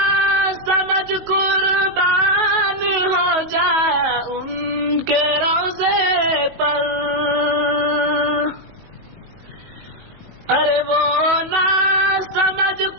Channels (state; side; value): late; left; 19 ms